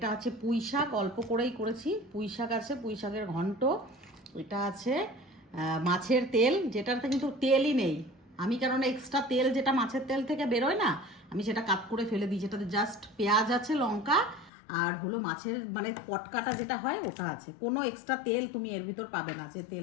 আছে পুঁই শাক, অল্প করেই করেছি, পুঁই শাক আছে, পুঁই শাকের ঘন্ট। এটা আছে মাছের তেল, যেটাতে কিন্তু তেলই নেই। আমি কেননা এক্সট্রা তেল যেটা মাছের তেল থেকে বেরোয় না, আমি সেটা কাট করে ফেলে দিই, যেটাতে জাস্ট পেঁয়াজ আছে, লঙ্কা আর হলো মাছের মানে পটকাটা যেটা হয় ওটা আছে, কোনো এক্সট্রা তেল তুমি এর ভিতর পাবে না যে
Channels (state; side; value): drops out; right; at 14.5 s